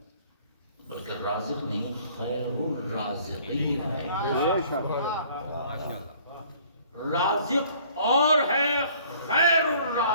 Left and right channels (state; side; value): inverted; both; correlation -0.56